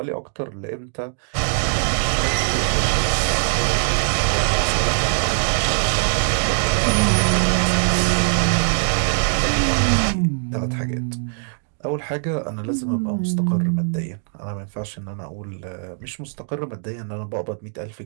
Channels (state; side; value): silent; left; digital silence